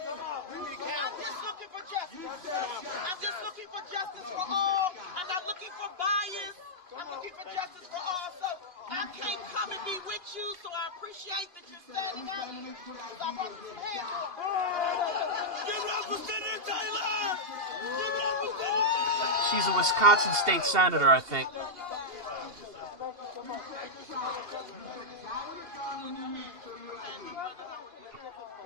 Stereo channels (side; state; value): left; late; 2.8 ms